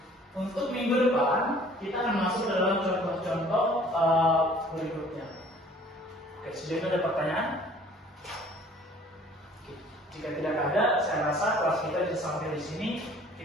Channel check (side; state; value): both; normal; correlation 0.53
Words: untuk minggu depan kita akan masuk ke dalam contoh-contoh berikutnya. Oke, sejauh ini ada pertanyaan? Oke, jika tidak ada, saya rasa kelas kita bisa sampai di sini.